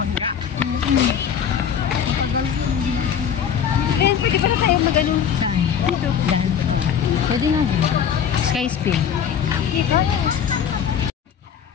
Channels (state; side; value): quieter; right; 8.2 dB